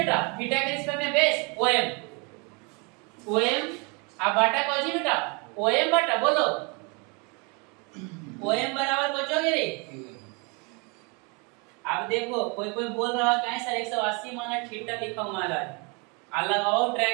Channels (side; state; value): left; quieter; 31.7 dB